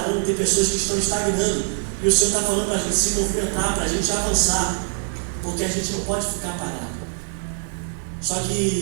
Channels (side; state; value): left; silent; 63 dB below the other